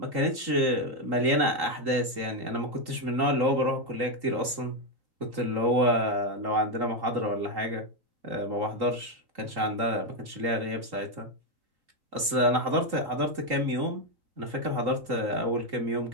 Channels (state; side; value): late; left; 3.8 ms